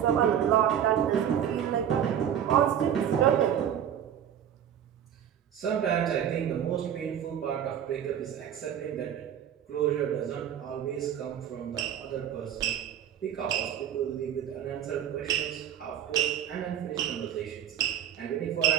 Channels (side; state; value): left; quieter; 9.6 dB